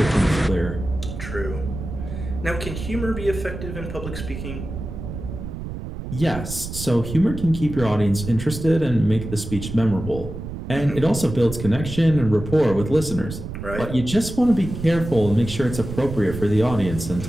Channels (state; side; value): noise; right; rumble, 8 dB below the sound